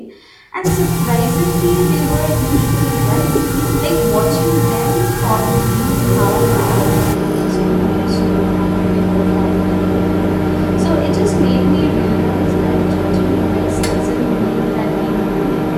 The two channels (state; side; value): identical; both; correlation 1.00